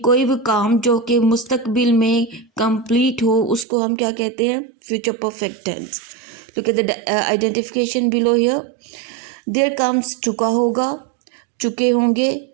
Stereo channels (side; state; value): left; drops out; at 3.7 s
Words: कोई भी काम जो कि मुस्तकबिल में कंप्लीट हो उसको हम क्या कहते हैं? Future perfect tense. Look at the identification below here. There comes चुका होगा, चुके होंगे,